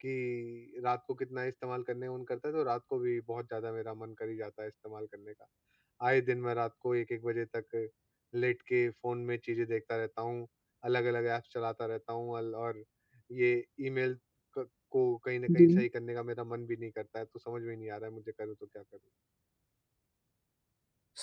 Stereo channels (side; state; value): both; identical; correlation 1.00